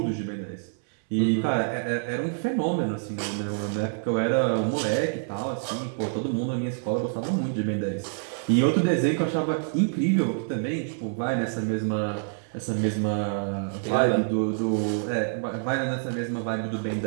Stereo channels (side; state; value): left; silent; 60 dB below the other